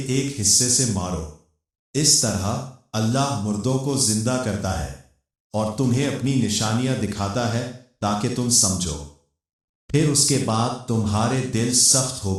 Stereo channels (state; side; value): identical; both; correlation 1.00